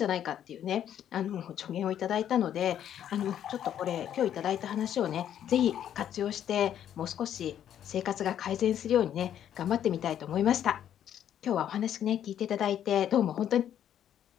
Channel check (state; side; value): quieter; right; 10.2 dB